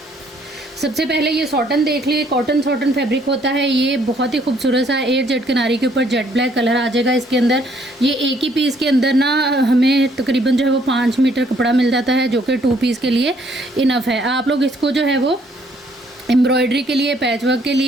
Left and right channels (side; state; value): both; normal; correlation 0.65